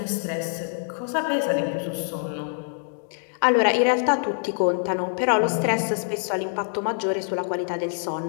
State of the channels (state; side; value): silent; right; 62 dB below the other